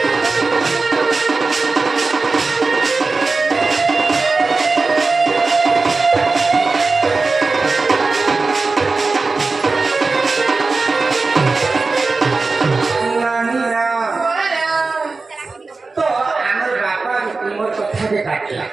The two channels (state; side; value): quieter; left; 3.9 dB